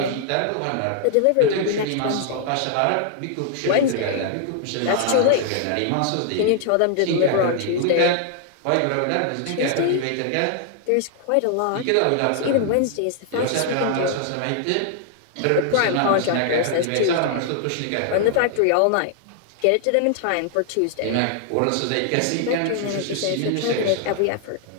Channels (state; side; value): different; both; correlation 0.00